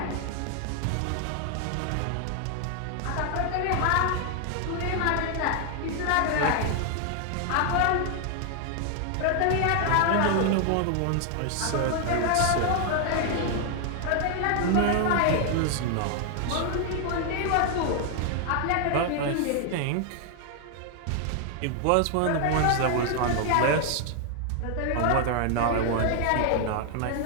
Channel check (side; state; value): both; different; correlation 0.00